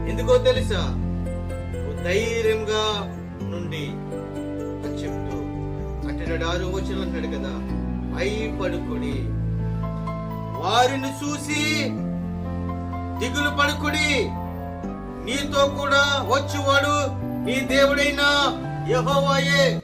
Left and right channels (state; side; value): identical; both; correlation 1.00